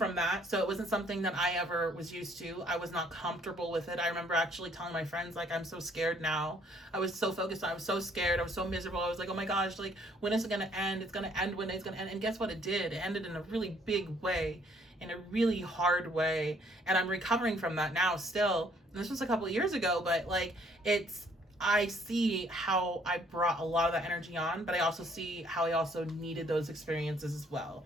that, so it wasn't something that I ever was used to. I was not comfortable with it. I remember actually telling my friends, like, I'm so scared now. I was so focused on, I was so scared, I was so miserable. I was like, oh my gosh, like, when is it gonna end? It's gonna end when it's gonna end. And guess what? It did. It ended in a really big way, in a really hard way. And I'm recovering from that now still. And this was a couple of years ago, but like, I see how I brought a lot of that energy on, but I also see how I also needed those experiences as well,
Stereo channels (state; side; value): normal; both; correlation 0.63